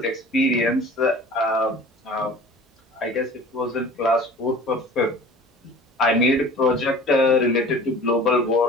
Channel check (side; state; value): both; normal; correlation 0.44